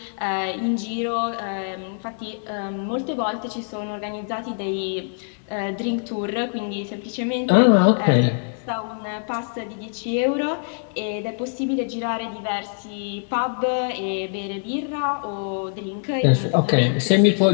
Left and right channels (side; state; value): right; silent; 63 dB below the other